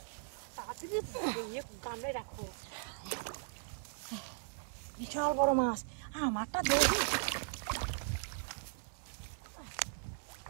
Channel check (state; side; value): silent; left; 52 dB below the other